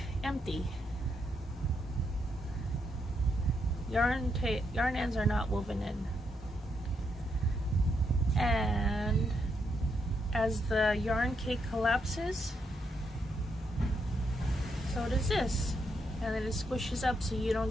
empty. Yarn ends are not woven in. And as the yarn cake collapses, so does this. And then it squishes up so you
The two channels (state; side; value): normal; both; correlation 0.79